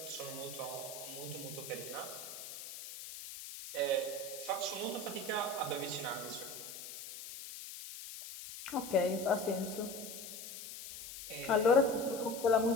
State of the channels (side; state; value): left; noise; hiss, 10 dB below the sound